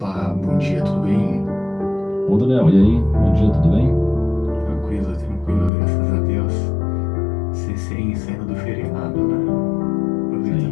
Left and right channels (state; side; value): drops out; right; at 5.7 s